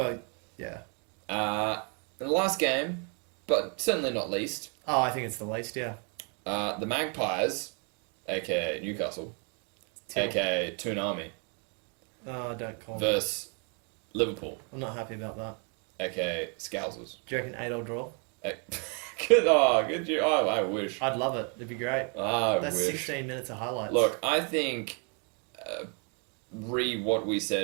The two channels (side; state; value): left; quieter; 38.3 dB